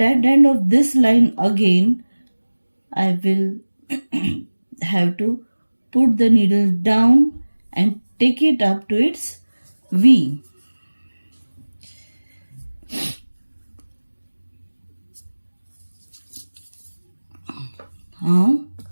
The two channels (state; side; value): inverted; both; correlation -1.00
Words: end of this line again, I will have to put the needle down and take it up to its V. Now